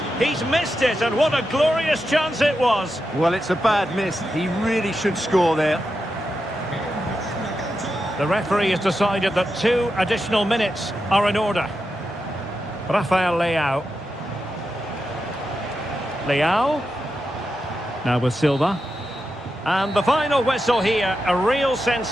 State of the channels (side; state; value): both; normal; correlation 0.88